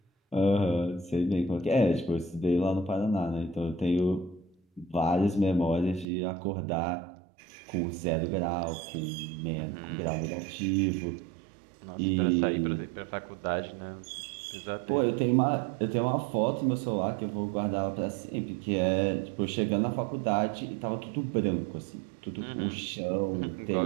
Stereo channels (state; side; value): drops out; left; at 6.1 s